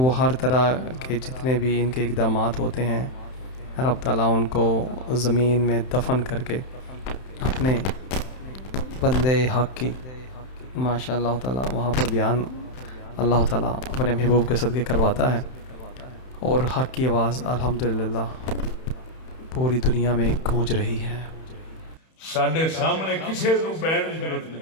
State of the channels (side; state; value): right; late; 31 ms